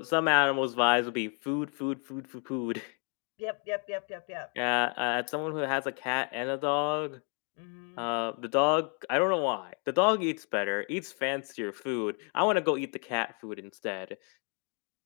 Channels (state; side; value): quieter; right; 39.4 dB